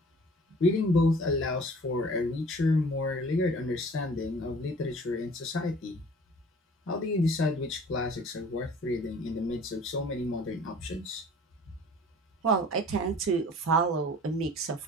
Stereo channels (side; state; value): both; normal; correlation 0.48